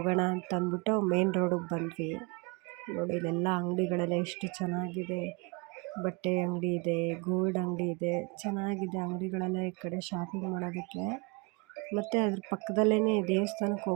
ಅಂತ ಅಂದ್ಬಿಟ್ಟು ಮೇನ್ ರೋಡಿಗೆ ಬಂದ್ವಿ. ನೋಡಿ, ಇಲ್ಲೆಲ್ಲ ಅಂಗಡಿಗಳೆಲ್ಲ ಎಷ್ಟು ಚೆನ್ನಾಗಿದೆ. ಬಟ್ಟೆ ಅಂಗಡಿ ಇದೆ, ಗೋಲ್ಡ್ ಅಂಗಡಿ ಇದೆ, ಚೆನ್ನಾಗಿದೆ ಅಂಗಡಿಗಳೆಲ್ಲ ಈ ಕಡೆ ಶಾಪಿಂಗ್ ಮಾಡೋದಕ್ಕೆ. ಮತ್ತು ಅದ್ರ ಪಕ್ಕದಲ್ಲೇ ದೇವಸ್ಥಾನಕ್ಕೆ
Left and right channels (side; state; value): left; quieter; 29.5 dB